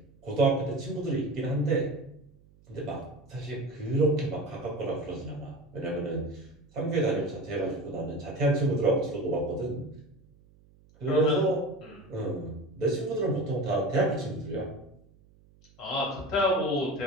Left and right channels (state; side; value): noise; right; hum, 28 dB below the sound